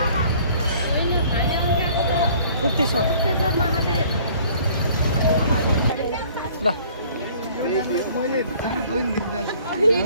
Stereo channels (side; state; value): both; inverted; correlation -0.54